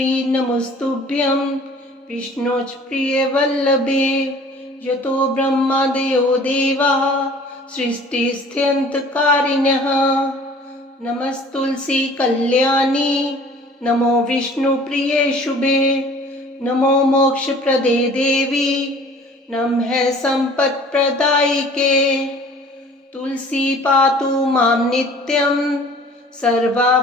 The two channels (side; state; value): both; normal; correlation 0.49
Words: नमस्तुभ्यं विष्णोच प्रिय वल्लभे यतो ब्रह्मादयो देवाः सृष्टिस्थित्यन्तकारिणः नमस्तुलसी कल्याणी नमो विष्णुप्रिये शुभे नमो मोक्षप्रदे देवी नमः सम्पत्प्रदायिके तुलसी पातु मां नित्यं